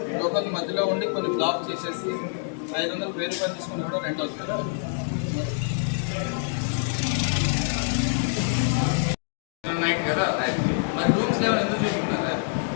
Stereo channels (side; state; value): right; silent; digital silence